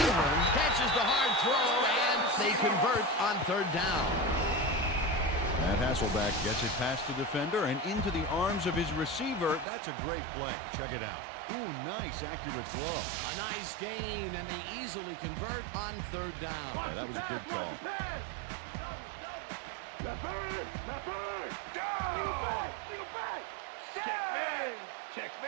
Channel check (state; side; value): drops out; left; at 9.7 s